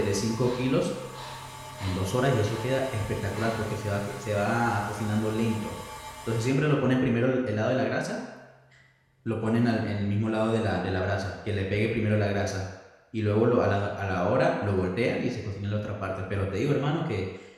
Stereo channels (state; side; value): identical; both; correlation 1.00